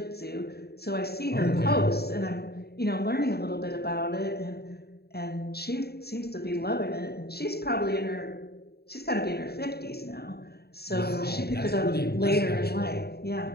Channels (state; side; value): late; right; 0.46 ms